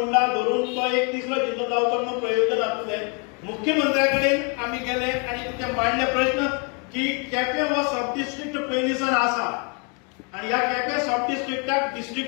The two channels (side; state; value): right; quieter; 34.1 dB